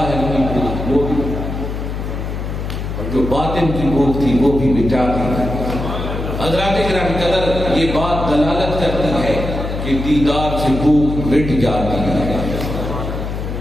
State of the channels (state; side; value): noise; left; hum, 5 dB below the sound